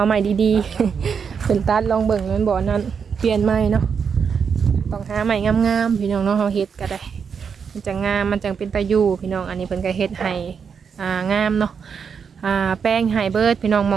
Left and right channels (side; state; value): left; quieter; 6.5 dB